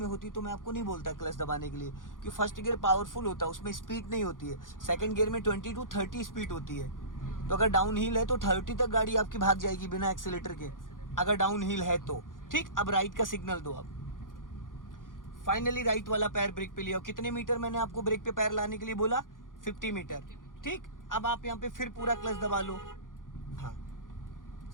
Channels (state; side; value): late; right; 0.89 ms